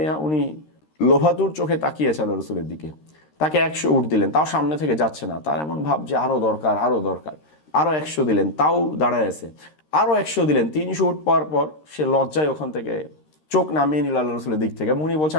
উনি লোভাতুর চোখে তাকিয়েছে আল্লাহ রসুলের দিকে, তাকে 100 উট দিলেন, তাও সামনে থেকে যাচ্ছে না। তার এমন ভাব যে আরো দরকার, আরো দরকার। আরো 100 দিলেন, তাও দাঁড়ায় আছে। আরো 100 দিলেন। 300 উট পাওয়ার পর সে লজ্জায় ওখান থেকে চোখ নামিয়ে নিল আল্লাহ রসুলের দিক থেকে। উনি বলছে,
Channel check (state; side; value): late; right; 13 ms